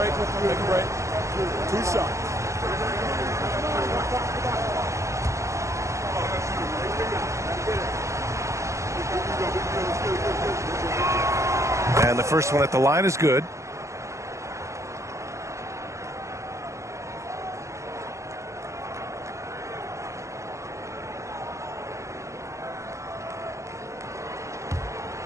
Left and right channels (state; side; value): late; left; 0.15 ms